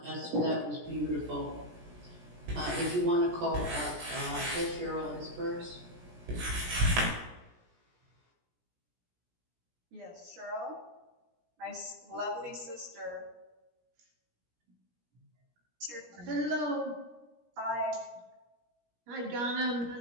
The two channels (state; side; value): late; left; 17 ms